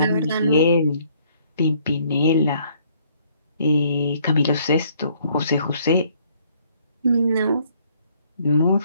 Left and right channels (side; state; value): both; inverted; correlation -0.64